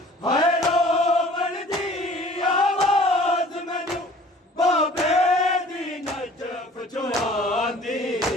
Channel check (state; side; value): normal; both; correlation 0.50